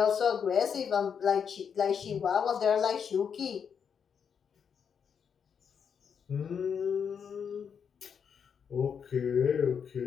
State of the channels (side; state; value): right; quieter; 7.1 dB